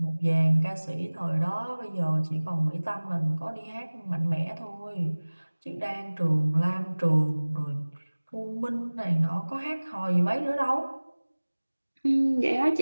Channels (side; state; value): both; inverted; correlation -1.00